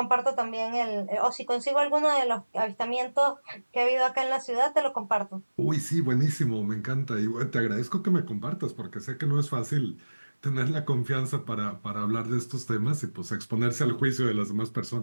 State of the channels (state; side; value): inverted; both; correlation -1.00